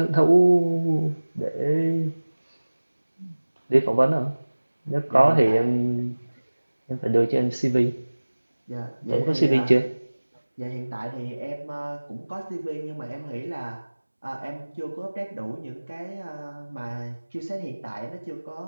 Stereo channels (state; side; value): inverted; both; correlation -1.00